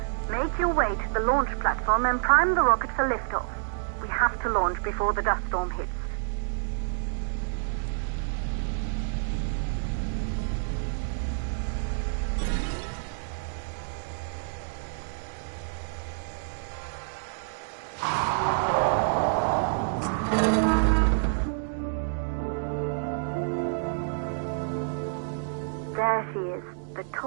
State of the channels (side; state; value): left; silent; digital silence